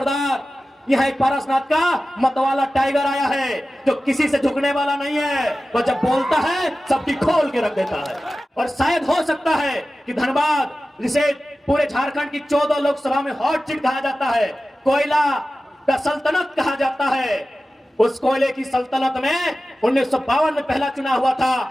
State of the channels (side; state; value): both; normal; correlation 0.95